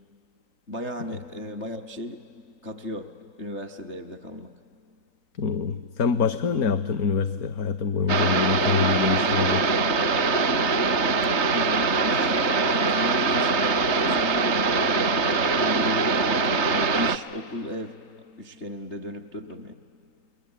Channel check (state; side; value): late; right; 3.9 ms